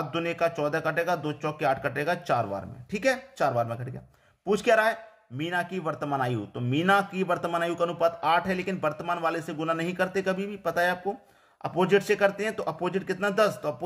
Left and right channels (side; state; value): both; identical; correlation 1.00